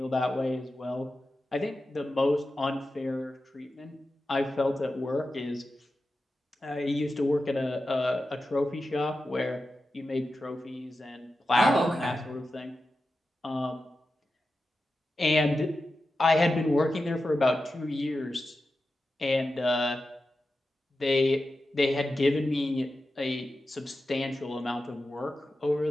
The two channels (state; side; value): normal; both; correlation 0.92